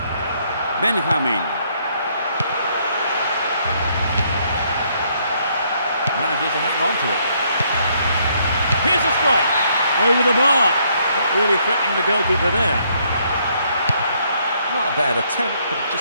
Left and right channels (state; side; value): inverted; both; correlation -0.70